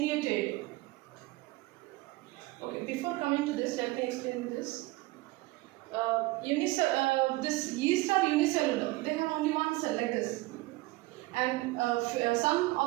Okay, before coming to this, let me explain this. This yeast are unicellular. They have only one cell, like this. And some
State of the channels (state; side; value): quieter; left; 20.5 dB